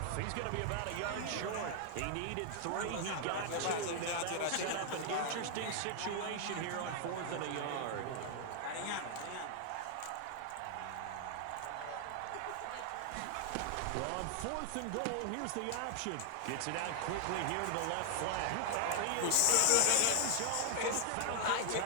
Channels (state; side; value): different; both; correlation 0.00